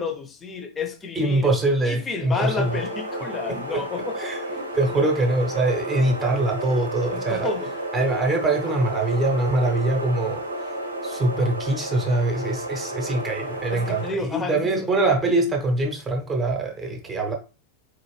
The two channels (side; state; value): both; normal; correlation 0.39